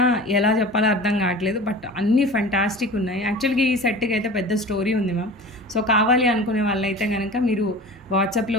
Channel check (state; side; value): normal; both; correlation 0.37